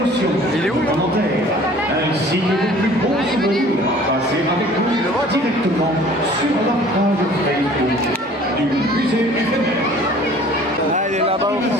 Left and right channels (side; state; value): both; normal; correlation 0.50